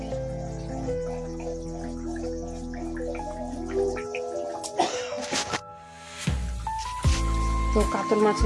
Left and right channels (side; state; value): both; identical; correlation 1.00